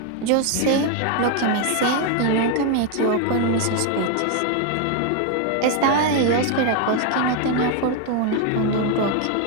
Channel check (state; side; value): different; both; correlation 0.01